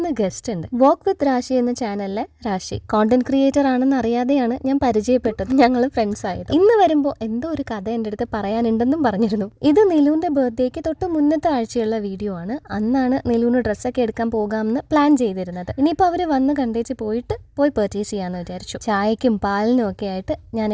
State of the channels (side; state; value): both; identical; correlation 1.00